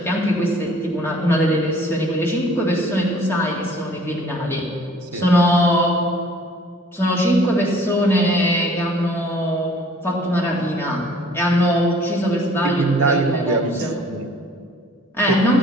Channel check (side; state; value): both; normal; correlation 0.54